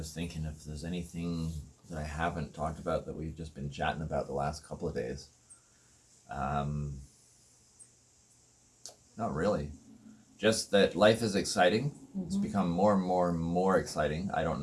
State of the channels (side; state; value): both; identical; correlation 1.00